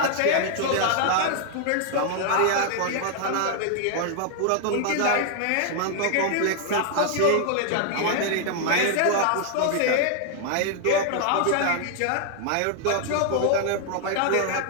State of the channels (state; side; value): different; both; correlation 0.00